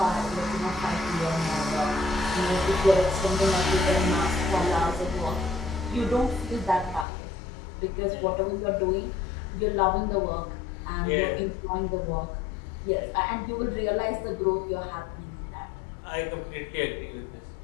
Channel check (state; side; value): drops out; right; at 7.1 s